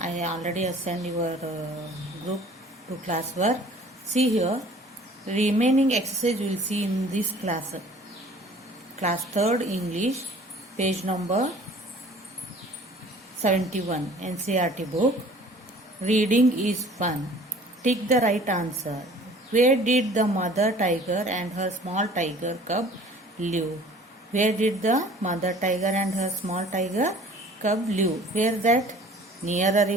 already assigned your group to class work. See here, remaining exercise you will see in this class. Class 3rd English, page number 71, NCERT book. Reading is fun. Tick the right answer. Where did the mother tiger and her small tiger cub live? Where did the mother tiger and her small tiger cub live? Where that? Near a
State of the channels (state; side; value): normal; both; correlation 0.50